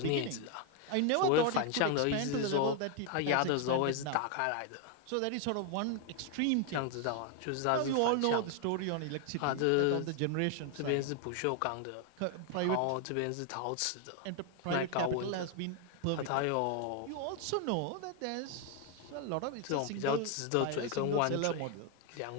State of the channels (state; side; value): different; both; correlation 0.01